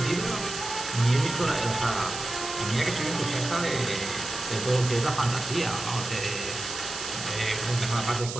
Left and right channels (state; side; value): noise; right; hiss, 7 dB below the sound